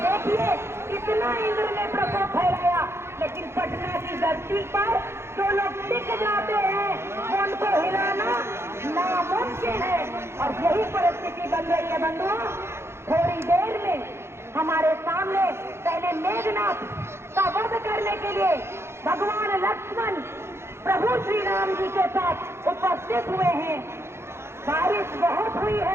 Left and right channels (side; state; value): left; late; 0.12 ms